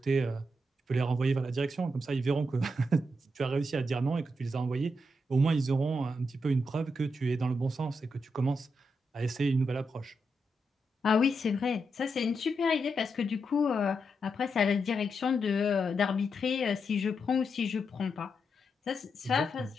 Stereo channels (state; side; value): normal; both; correlation 0.83